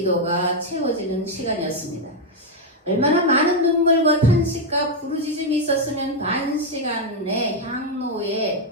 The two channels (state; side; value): normal; both; correlation 0.02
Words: 채워지는 시간이었습니다. 얼마나 많은 눈물과 탄식과 부르짖음이 있었으면 반 시간의